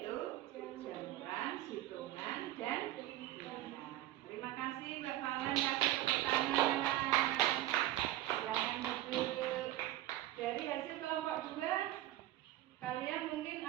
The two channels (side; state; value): left; quieter; 14.8 dB